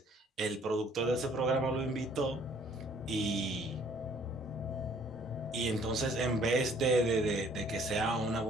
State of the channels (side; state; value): both; normal; correlation 0.59